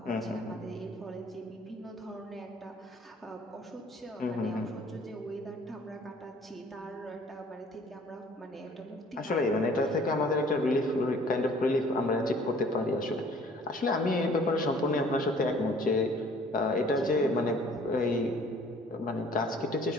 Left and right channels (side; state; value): both; normal; correlation 0.55